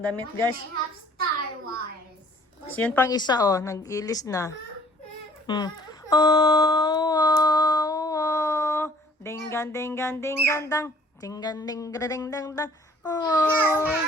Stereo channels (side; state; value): both; normal; correlation 0.56